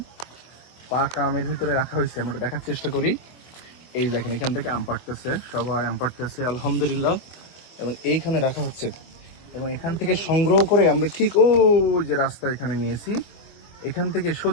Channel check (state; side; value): late; right; 24 ms